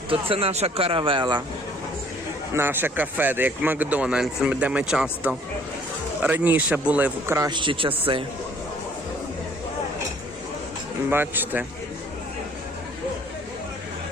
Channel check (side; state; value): both; normal; correlation 0.57